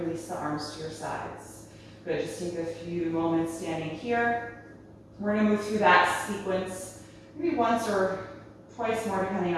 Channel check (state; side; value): identical; both; correlation 1.00